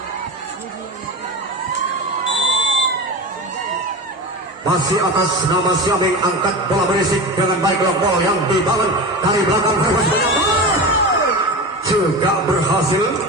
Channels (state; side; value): normal; both; correlation 0.26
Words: masih atas nama Syaming, angkat bola berisik dengan baik. Long ball yang dibangun dari belakang Verbos juga berhasil.